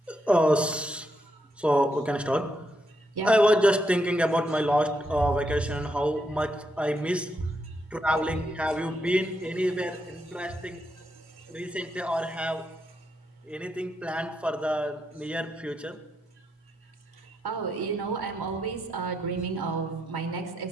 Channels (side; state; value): both; normal; correlation 0.80